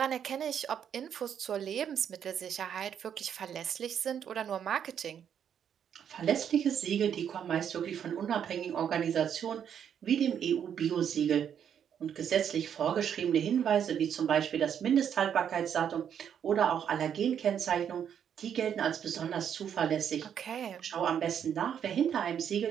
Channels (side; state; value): left; quieter; 8.6 dB